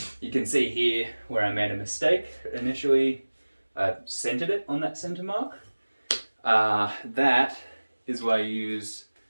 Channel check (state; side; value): inverted; both; correlation -1.00